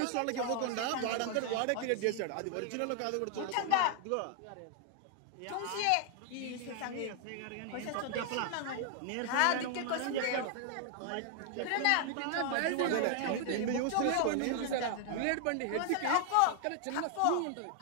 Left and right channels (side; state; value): both; different; correlation 0.00